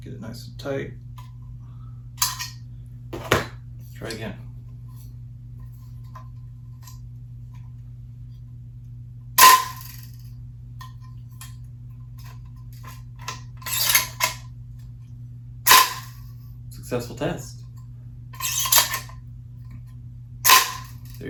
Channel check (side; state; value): both; identical; correlation 1.00